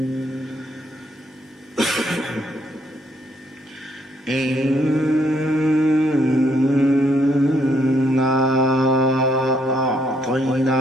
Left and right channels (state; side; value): normal; both; correlation 0.72